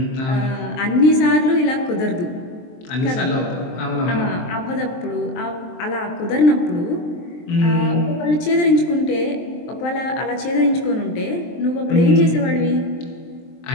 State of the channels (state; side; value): late; right; 23 ms